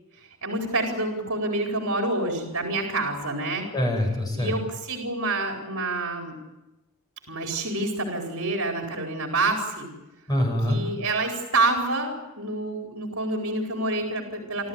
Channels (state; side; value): normal; both; correlation 0.19